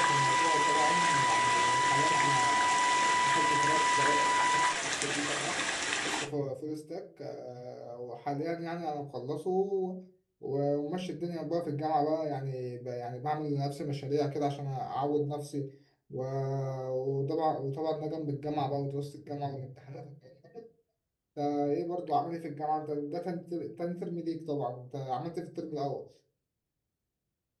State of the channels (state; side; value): identical; both; correlation 1.00